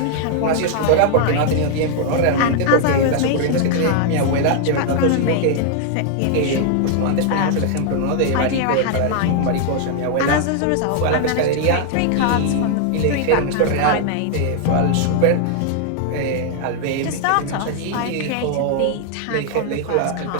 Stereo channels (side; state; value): both; different; correlation 0.00